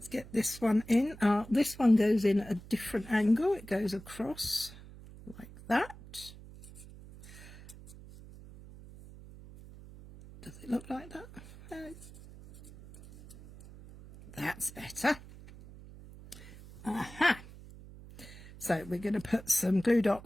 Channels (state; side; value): noise; right; hum, 17 dB below the sound